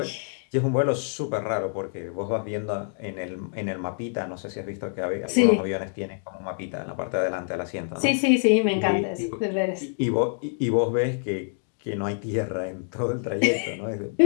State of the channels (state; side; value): silent; right; 61 dB below the other